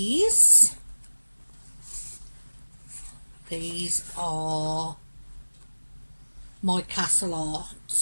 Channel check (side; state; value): both; inverted; correlation -1.00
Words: are my Castle